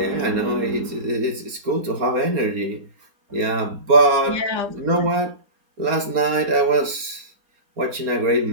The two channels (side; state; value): left; late; 4.3 ms